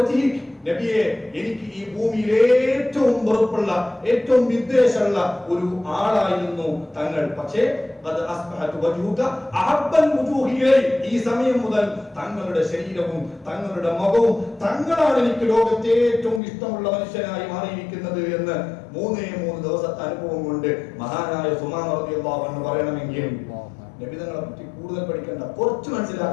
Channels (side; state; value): right; drops out; at 16.4 s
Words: നബിയെ, എനിക്ക് ഈ ഭൂമിയിൽ ഏറ്റവും വെറുപ്പുള്ള ഏറ്റവും വിദ്വേഷമുള്ള ഒരു ആളായിരുന്നു തങ്ങൾ. പക്ഷേ ഈ സമയം മുതൽ തങ്ങളുടെ ശരീരവും തങ്ങളുടെ മുഖവും തങ്ങളാണ് എനിക്ക് ലോകത്തെ ഏറ്റവും ഇഷ്ടമുള്ള മനുഷ്യനായി മാറിയിരിക്കുന്നത് എന്ന് 3 ദിവസത്തെ അനുഭവം കൊണ്ട് മഹാനായ സുമാമ റളിയല്ലാഹു അൻഹു പറയണമെങ്കിൽ നബിതങ്ങളെ പറ്റി കൂടുതൽ പഠിക്കേണ്ട, കുറച്ച്